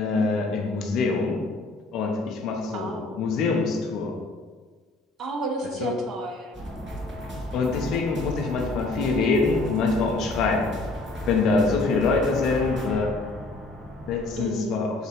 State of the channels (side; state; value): right; quieter; 3.1 dB